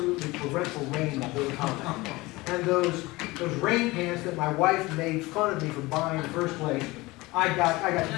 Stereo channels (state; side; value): quieter; right; 21.4 dB